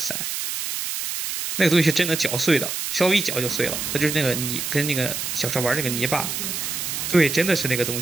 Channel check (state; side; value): noise; right; hiss, 3 dB below the sound